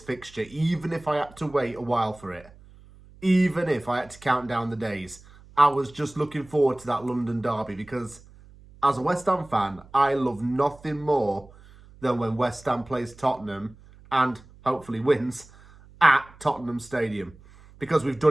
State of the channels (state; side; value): noise; right; hum, 23 dB below the sound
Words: even if I had to wait a while for it. Even if I had to count down the days. I was just looking forward to that London derby because, as a West Ham fan, I love nothing more than when West Ham plays Tottenham and hopefully wins at Tottenham Stadium. Because we've